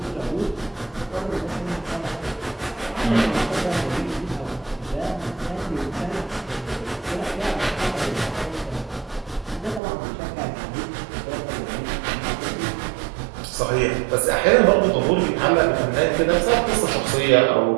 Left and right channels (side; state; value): left; drops out; at 9.8 s